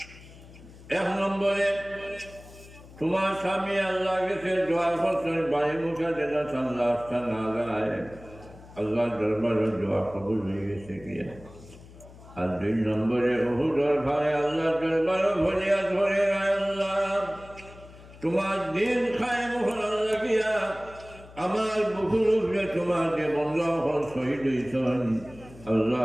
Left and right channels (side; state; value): left; noise; hum, 20 dB below the sound